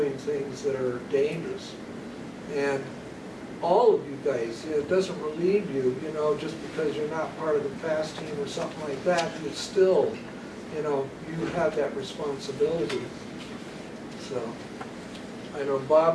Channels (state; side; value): identical; both; correlation 1.00